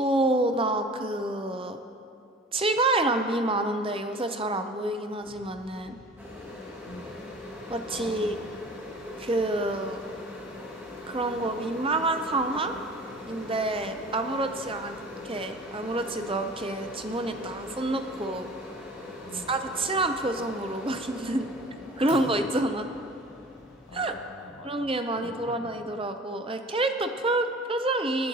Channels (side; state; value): both; normal; correlation 0.43